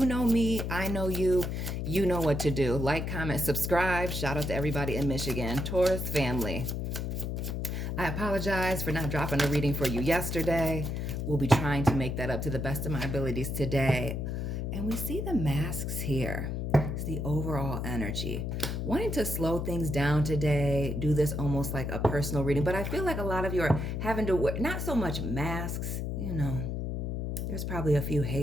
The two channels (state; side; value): noise; left; hum, 2 dB below the sound